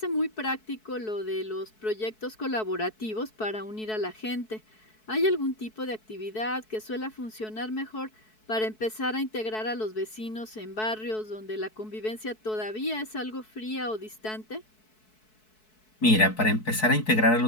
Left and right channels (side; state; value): right; late; 4.6 ms